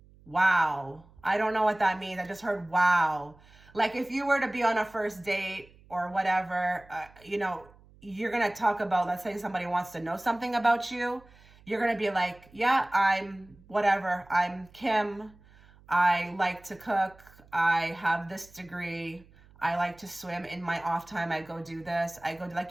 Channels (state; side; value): noise; right; hum, 26 dB below the sound